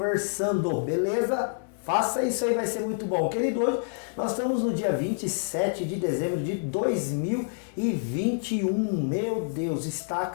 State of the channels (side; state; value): right; silent; digital silence